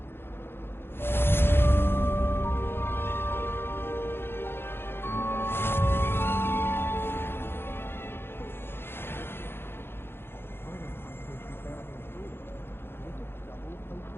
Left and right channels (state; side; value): late; right; 0.11 ms